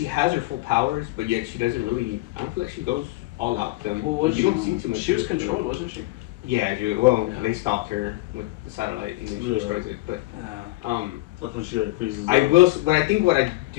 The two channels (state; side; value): quieter; right; 20.0 dB